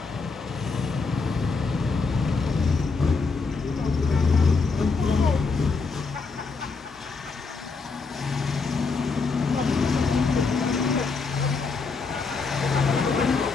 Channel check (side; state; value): right; quieter; 4.4 dB